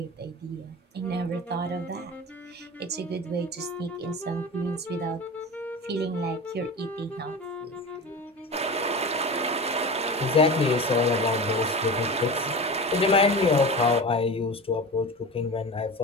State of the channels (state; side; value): normal; both; correlation 0.30